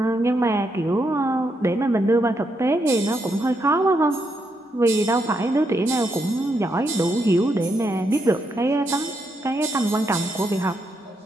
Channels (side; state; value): both; normal; correlation 0.79